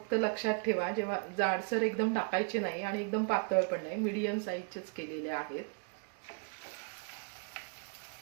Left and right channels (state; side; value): quieter; left; 39.3 dB